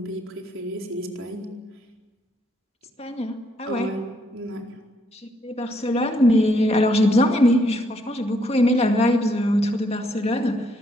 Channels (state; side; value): normal; both; correlation 0.72